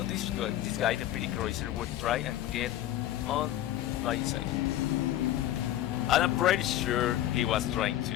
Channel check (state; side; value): quieter; right; 13.3 dB